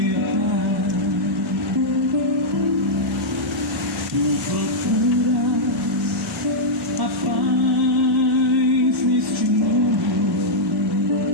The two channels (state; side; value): normal; both; correlation -0.07